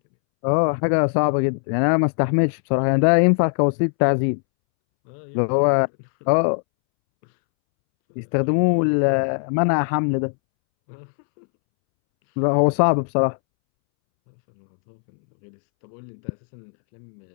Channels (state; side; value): silent; right; 65 dB below the other